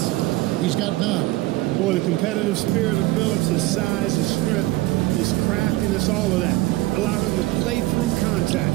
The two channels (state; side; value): quieter; left; 18.7 dB